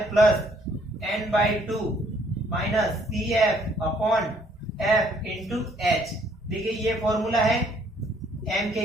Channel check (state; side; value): normal; both; correlation 0.64